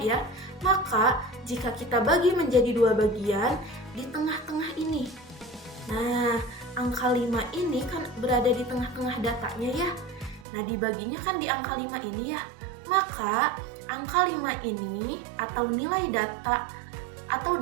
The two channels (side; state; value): left; drops out; at 10.5 s